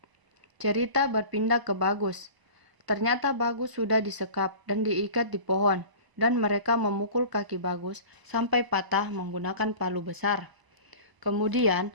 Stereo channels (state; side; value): late; left; 1.0 ms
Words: Cerita berpindah ke Bagus. Ternyata Bagus sudah disekap dan diikat di pohon, dan mereka memukul kaki Bagus sampai patah menggunakan palu besar. Kemudian,